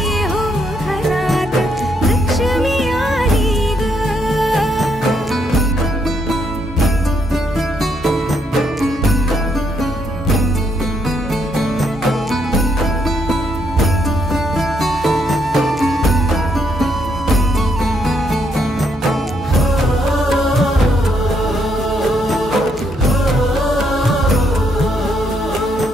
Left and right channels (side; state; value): both; normal; correlation 0.75